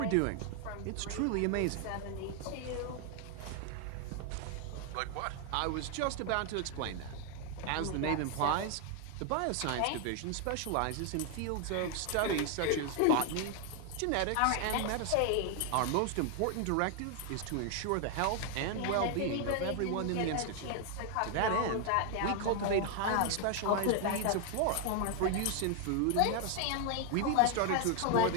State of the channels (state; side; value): different; both; correlation 0.00